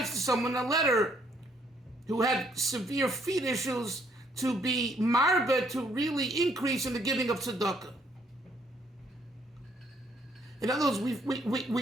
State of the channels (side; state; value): both; normal; correlation 0.67